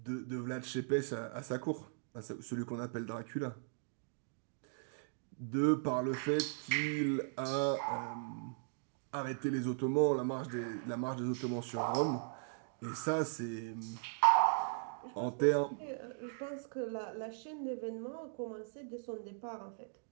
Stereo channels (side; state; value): left; silent; digital silence